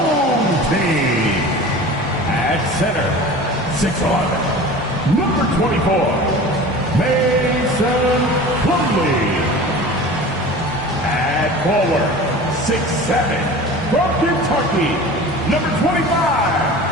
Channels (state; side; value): normal; both; correlation 0.38